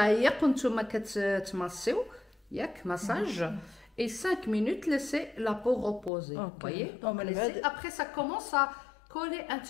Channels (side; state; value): right; drops out; at 6.1 s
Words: وانتم كتماسيو ياك مساج et 5 minutes laisser la peau reposer. Vous voyez, donc après ça commence à coller un